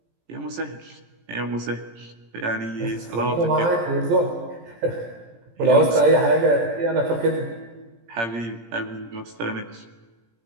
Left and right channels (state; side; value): late; left; 17 ms